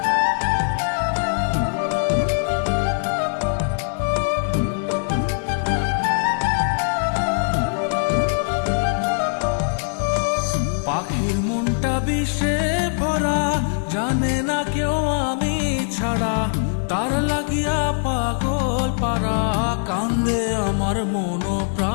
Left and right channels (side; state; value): right; silent; digital silence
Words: পাখির মনটা বিষে ভরা, জানে না কেউ আমি ছাড়া, তার লাগিয়া পাগল পারা, কান্দে আমার মন